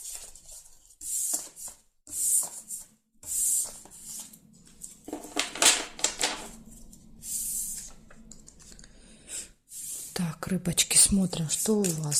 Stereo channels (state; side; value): identical; both; correlation 1.00